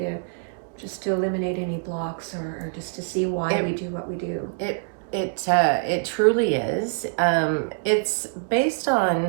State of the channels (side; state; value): left; silent; digital silence